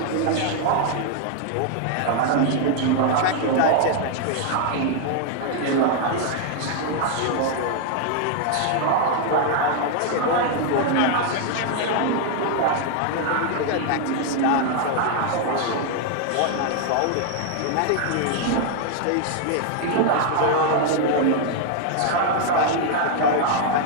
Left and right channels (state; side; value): different; both; correlation 0.00